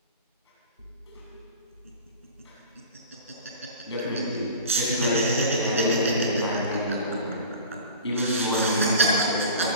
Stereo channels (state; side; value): inverted; both; correlation -0.38